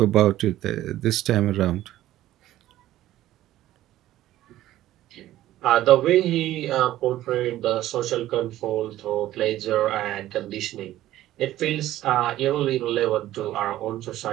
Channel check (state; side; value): quieter; left; 14.3 dB